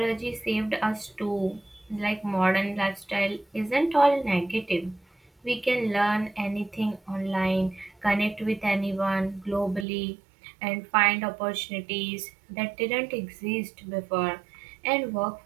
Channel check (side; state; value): left; drops out; at 9.9 s